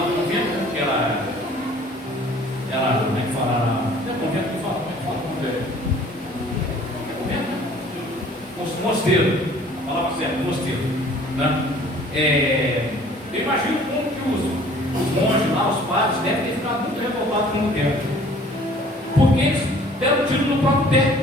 que era como é que fala? Não é convento que fala, como é que fala convento? Convento? Mosteiro, a palavra certa, mosteiro. Né? Eu imagino como que os monges lá, os padres, devem ter ficado muito revoltados com o tempo. Porque eles deram tiro no próprio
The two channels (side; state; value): both; normal; correlation 0.52